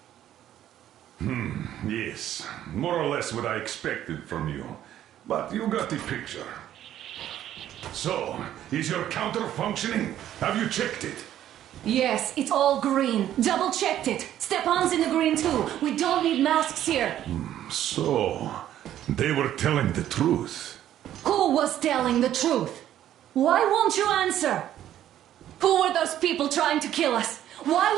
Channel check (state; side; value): quieter; left; 11.8 dB